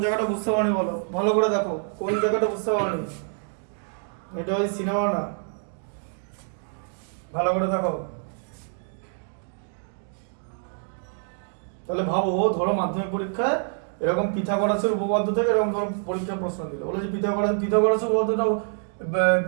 জায়গাটা বুঝতে পারনি, বলো ভালো করে দেখো কোন জায়গাটা বুঝতে পারনি, এটা ওই সিনেমা না, ভালো করে দেখো। তাহলে ভাবো, ধরো মাধ্যমিক পরীক্ষায় এরকম পিথাগোরাসের উপপাদ্য থেকে এরকম ধরো পরীক্ষার প্রশ্ন দিল, বলে যে পিথাগোরাসের উপপাদ্যটাও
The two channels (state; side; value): silent; left; digital silence